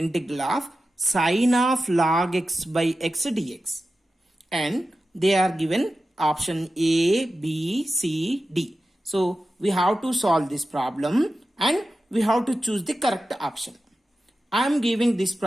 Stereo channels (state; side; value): normal; both; correlation 0.93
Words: of sine of log x by x dx, and they are given option A, B, C, D. So we have to solve this problem and we have to choose the correct option. I am giving this